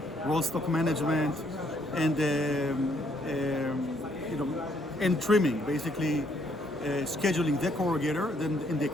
roll stock management and and trimming, basically scheduling the corrugator, then in the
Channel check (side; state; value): both; normal; correlation 0.69